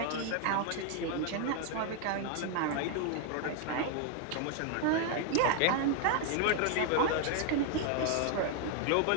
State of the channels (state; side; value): different; both; correlation 0.00